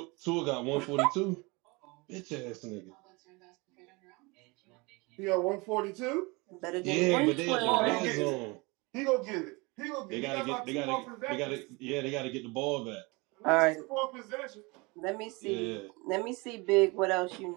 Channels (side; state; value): left; quieter; 26.5 dB